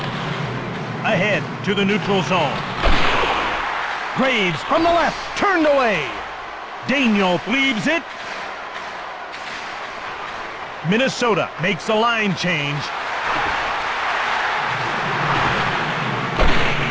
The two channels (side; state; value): both; identical; correlation 1.00